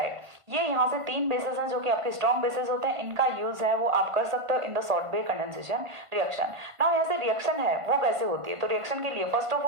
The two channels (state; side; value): late; left; 1.5 ms